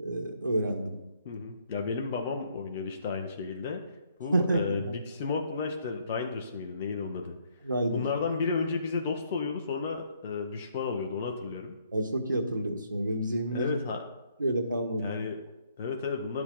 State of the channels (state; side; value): inverted; both; correlation -0.68